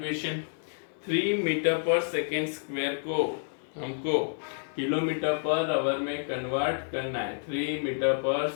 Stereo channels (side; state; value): right; silent; 58 dB below the other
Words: 3 मीटर पर सेकेंड स्क्वायर को हमको किलोमीटर पर आवर में कन्वर्ट करना है 3 मीटर पर